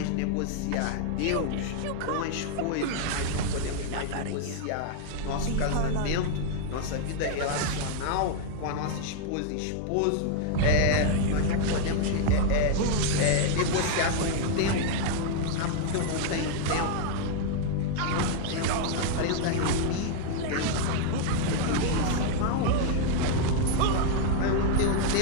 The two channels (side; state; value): both; different; correlation 0.00